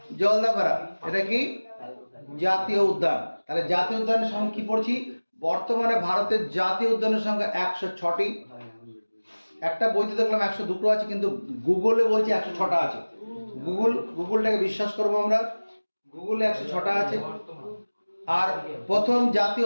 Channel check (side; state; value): both; inverted; correlation -1.00